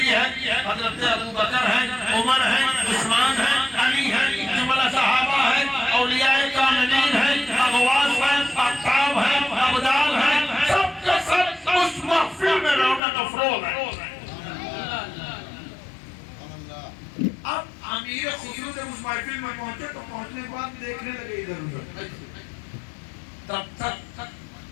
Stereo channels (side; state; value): right; drops out; at 13.0 s